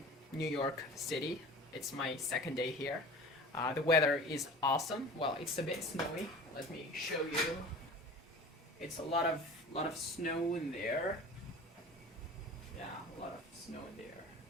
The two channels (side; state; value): both; normal; correlation 0.39